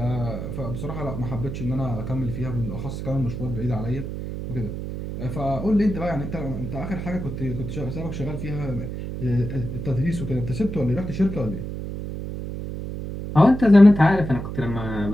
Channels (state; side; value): noise; right; hum, 6 dB below the sound